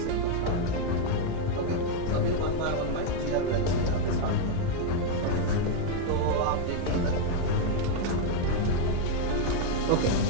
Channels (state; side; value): different; both; correlation 0.01